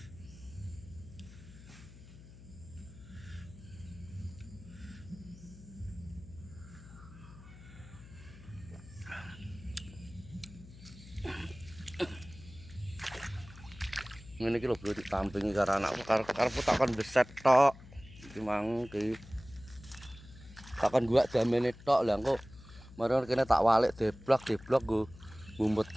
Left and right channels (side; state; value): left; noise; hum, 18 dB below the sound